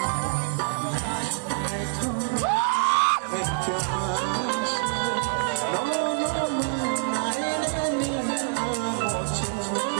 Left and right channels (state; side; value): silent; left; digital silence